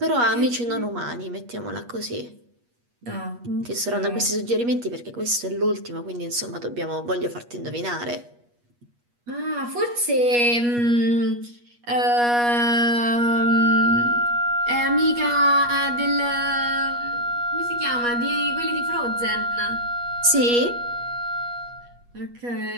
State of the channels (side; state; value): left; late; 8.3 ms